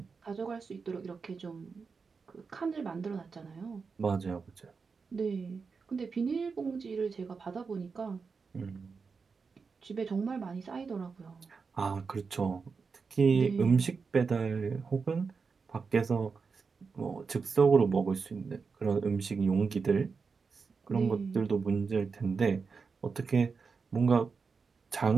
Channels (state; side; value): quieter; left; 5.1 dB